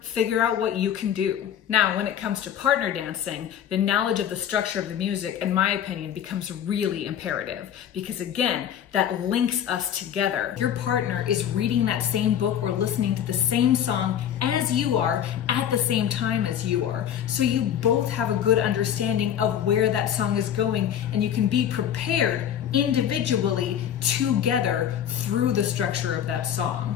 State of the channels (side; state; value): right; quieter; 9.7 dB